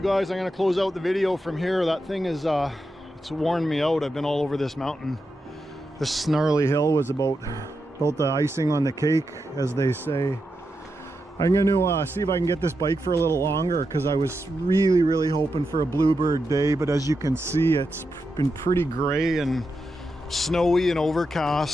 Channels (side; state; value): both; normal; correlation 0.87